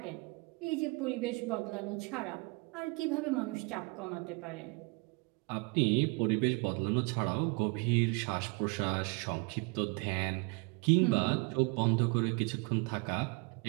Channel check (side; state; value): left; quieter; 29.5 dB